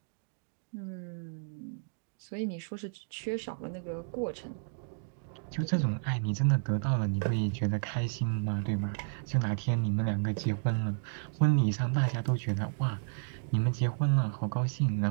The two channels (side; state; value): left; silent; digital silence